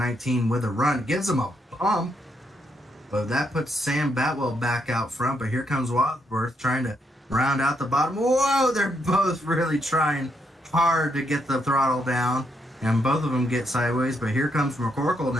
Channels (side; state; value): both; normal; correlation 0.77